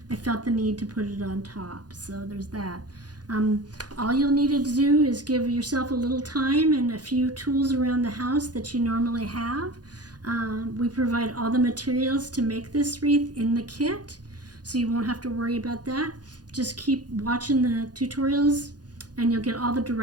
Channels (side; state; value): left; late; 0.69 ms